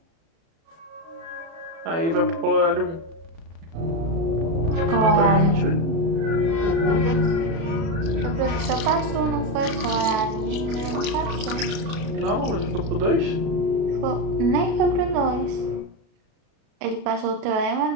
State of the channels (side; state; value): left; late; 36 ms